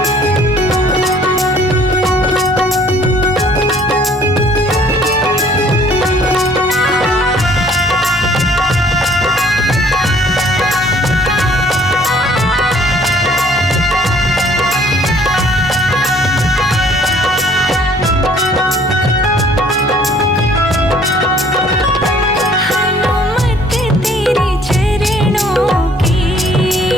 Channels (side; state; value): both; normal; correlation 0.58